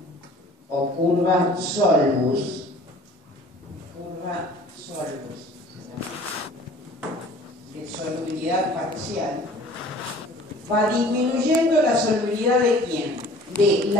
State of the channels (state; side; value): normal; both; correlation 0.48